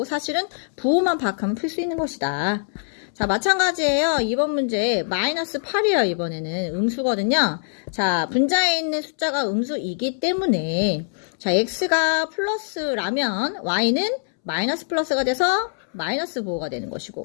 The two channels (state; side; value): silent; right; 63 dB below the other